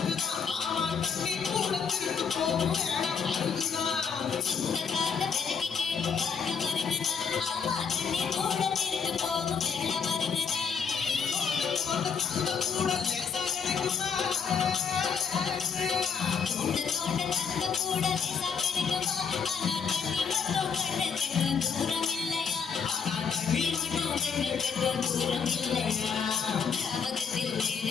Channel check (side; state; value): right; quieter; 6.4 dB